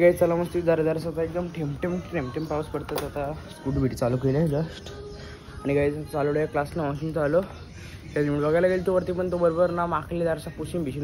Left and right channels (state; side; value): identical; both; correlation 1.00